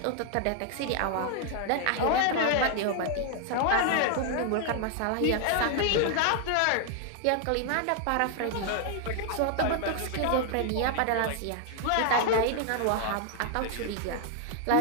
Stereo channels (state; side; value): different; both; correlation 0.00